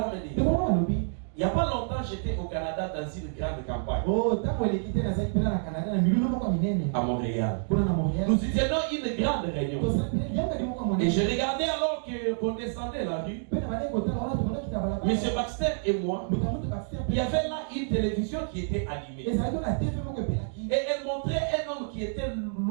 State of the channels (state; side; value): silent; left; digital silence